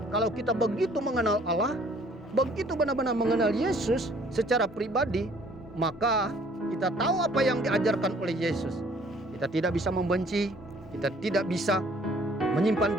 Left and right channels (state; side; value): normal; both; correlation 0.58